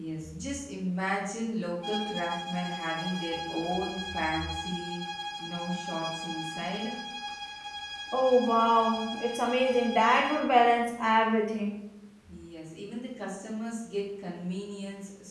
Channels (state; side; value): identical; both; correlation 1.00